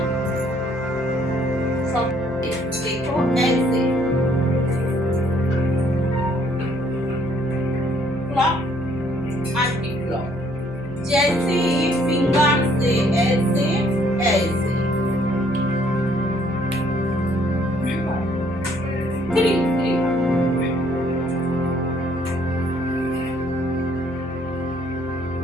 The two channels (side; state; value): left; noise; hum, 15 dB below the sound